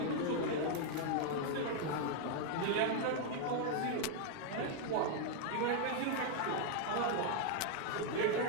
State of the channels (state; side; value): different; both; correlation 0.00